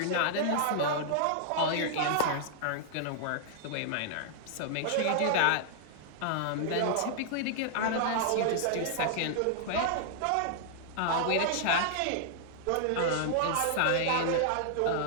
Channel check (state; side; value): different; both; correlation -0.01